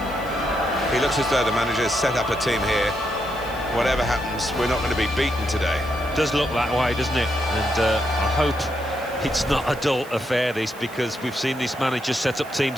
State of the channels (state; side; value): noise; right; hiss, 21 dB below the sound